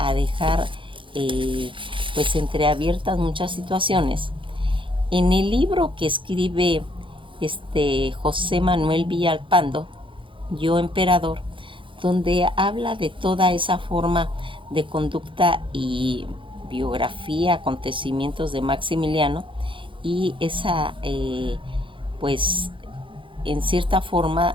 dejar pues entreabiertas muchas situaciones. En el libro que escribe José Manuel Villalpando, Yo Emperador, donde habla de toda esa forma de conducta y biografía, acontecimientos de Maximiliano y esa pues en cierta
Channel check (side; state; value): left; late; 0.25 ms